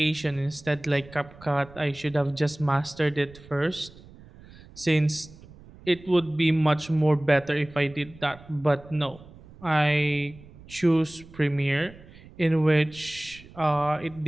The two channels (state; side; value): noise; right; rumble, 21 dB below the sound